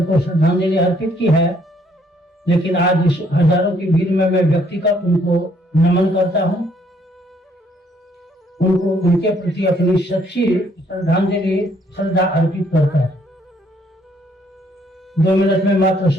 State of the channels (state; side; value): normal; both; correlation 0.66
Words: को श्रद्धांजलि अर्पित की है, लेकिन आज इस हजारों की भीड़ में मैं व्यक्तिगत उनको नमन करता हूँ, उनको उनके प्रति अपनी सच्ची श्रद्धांजलि श्रद्धा अर्पित करता है। 2 मिनट में मात्र